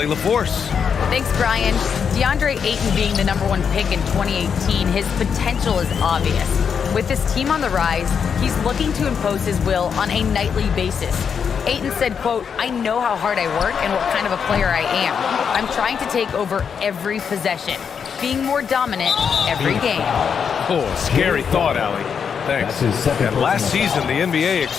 LaForce. Thanks, Brian. DeAndre Ayton being the #1 pick in 2018, his potential is obvious. With this team on the rise, he's looking to impose his will on a nightly basis. Ayton said, quote, "I know how hard I work and what kind of a player I am. I'm trying to take over every possession, being more dominant every game." Oh, scary thought, Allie. Thanks. And last season, the NBA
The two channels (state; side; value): quieter; right; 6.9 dB